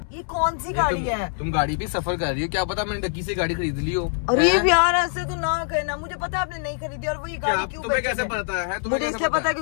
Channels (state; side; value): silent; right; 63 dB below the other